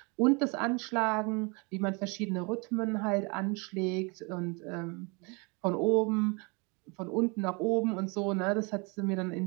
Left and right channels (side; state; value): left; quieter; 30.6 dB